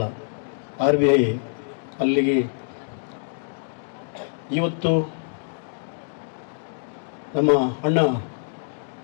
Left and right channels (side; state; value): right; silent; 62 dB below the other